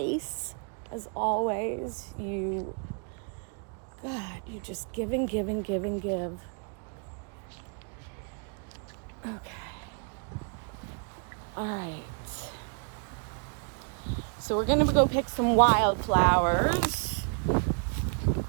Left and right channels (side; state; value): left; quieter; 38.2 dB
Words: As always, you just give and give and give and give. Okay, all right. So we're gonna go pick some wildflowers.